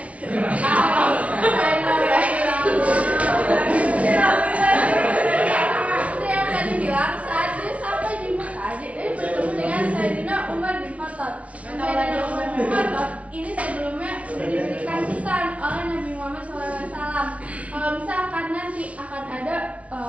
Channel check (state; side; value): late; left; 0.065 ms